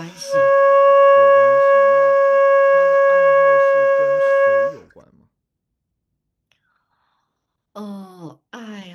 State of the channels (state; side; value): identical; both; correlation 1.00